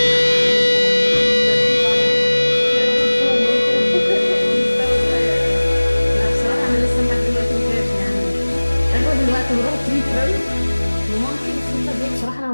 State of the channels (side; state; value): both; inverted; correlation -1.00